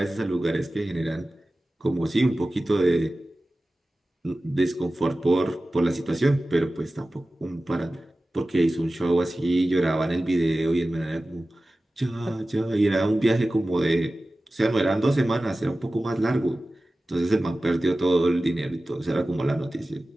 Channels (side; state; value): both; normal; correlation 0.96